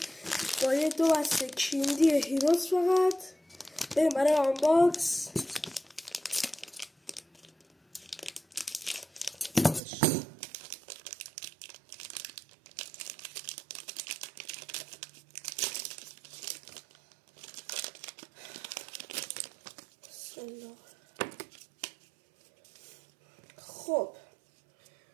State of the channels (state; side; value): drops out; left; at 9.8 s